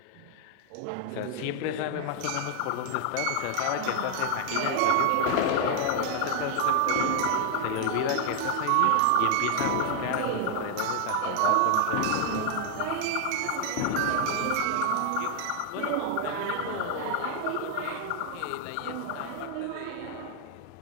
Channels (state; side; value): different; both; correlation 0.00